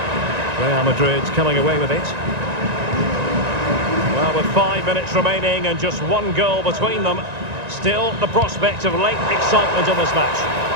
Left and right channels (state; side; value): late; left; 1.9 ms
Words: Real Madrid's coming away with it. Well, with 5 minutes remaining and just one goal between them, still the prospect of late excitement in this match.